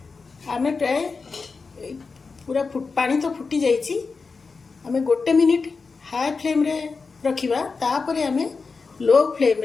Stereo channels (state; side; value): quieter; right; 4.6 dB